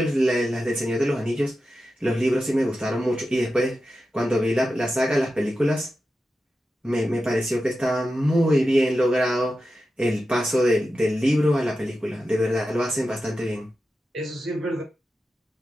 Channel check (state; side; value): normal; both; correlation 0.91